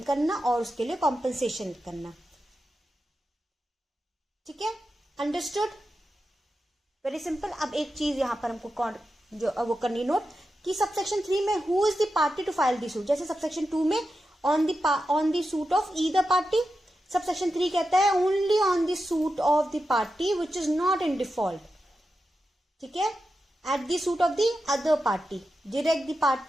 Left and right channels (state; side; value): normal; both; correlation 0.90